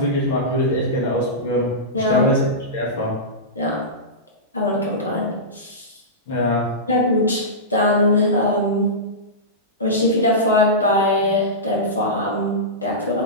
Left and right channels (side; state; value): both; normal; correlation -0.16